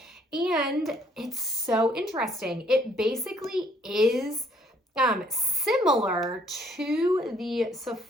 And it's so interesting. It basically is similar to the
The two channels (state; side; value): normal; both; correlation 0.65